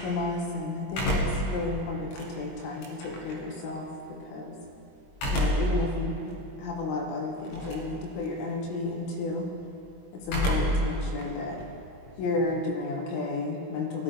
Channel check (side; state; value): right; late; 22 ms